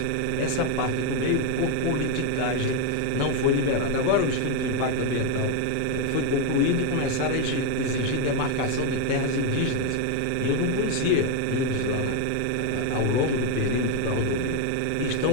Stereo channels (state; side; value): different; both; correlation 0.02